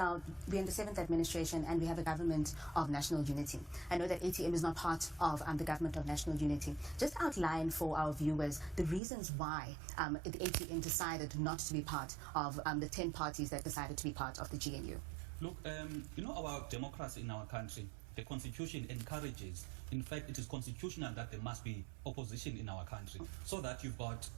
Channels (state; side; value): drops out; left; at 9.0 s